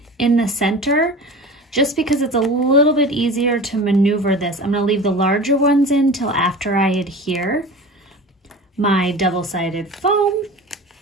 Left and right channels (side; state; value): both; normal; correlation 0.35